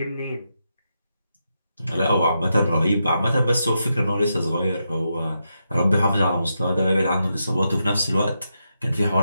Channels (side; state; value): both; inverted; correlation -0.85